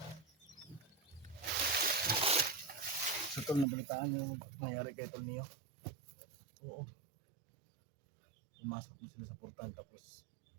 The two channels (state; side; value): drops out; left; at 3.7 s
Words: So tol, nabalitaan nyo nangyari kay Tol Neo. Oo. Pumasok mo sila sa portal tapos